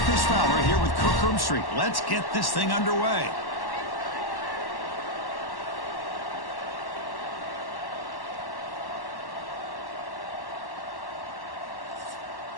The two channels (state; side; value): late; right; 1.1 ms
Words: Chris Fowler here with Kirk Herbstreit. Let's get this thing underway.